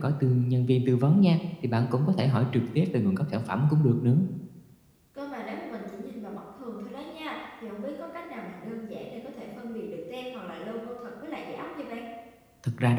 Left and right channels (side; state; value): both; identical; correlation 1.00